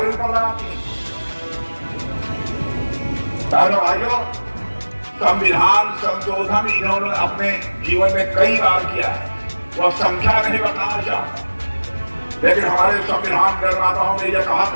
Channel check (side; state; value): both; inverted; correlation -1.00